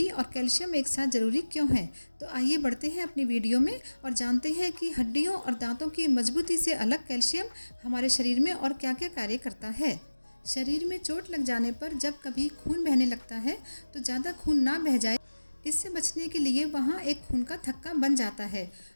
और कैल्शियम एक साथ ज़रूरी क्यों है। तो आइए बढ़ते हैं अपनी वीडियो में और जानते हैं कि हड्डियों और दांतों की मजबूती से अलग कैल्शियम हमारे शरीर में और क्या क्या कार्य करता है। शरीर में चोट लग जाने पर जब कभी खून बहने लगता है तो ज़्यादा खून ना बह जाए, इससे बचने के लिए वहाँ एक खून का थक्का बन जाता है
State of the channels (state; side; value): inverted; both; correlation -1.00